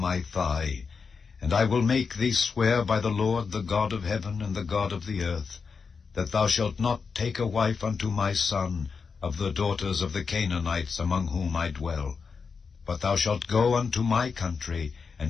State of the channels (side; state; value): right; quieter; 5.3 dB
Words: thigh, and I will make thee swear by the Lord, the God of heaven and the God of the earth, that thou shalt not take a wife unto my son of the daughters of the Canaanites among whom I dwell, but thou shalt go unto my country